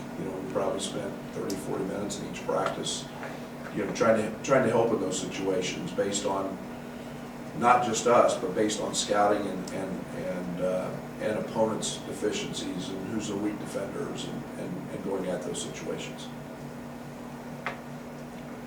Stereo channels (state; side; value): identical; both; correlation 1.00